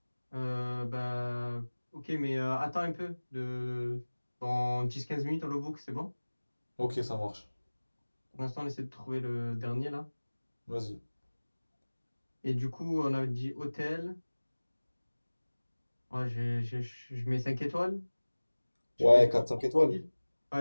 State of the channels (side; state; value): both; inverted; correlation -1.00